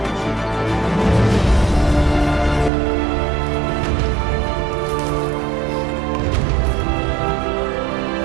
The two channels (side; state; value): left; drops out; at 2.7 s